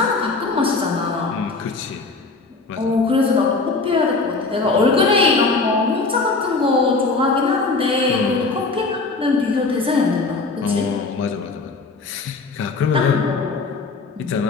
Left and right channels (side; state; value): right; quieter; 3.9 dB